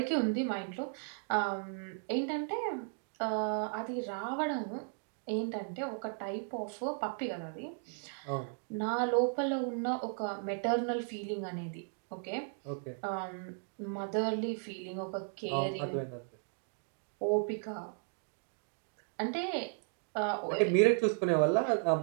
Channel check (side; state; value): left; silent; 54 dB below the other